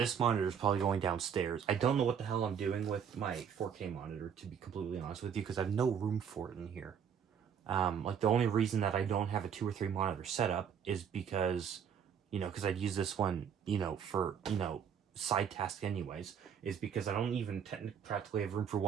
monitor is probably going downstairs. I don't know what the hell I'm doing with my 4K monitor, to be completely honest with you, because I have no room for it in here. Like, the only reason that I don't have a 2 or 3 monitor setup is because, you know, because I'd use this one, you know, for, you know, side task anyways, is because I don't even practically have room for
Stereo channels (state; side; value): quieter; left; 7.8 dB